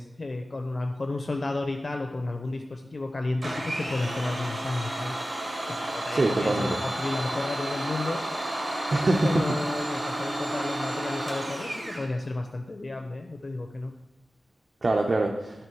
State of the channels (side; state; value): both; normal; correlation 0.95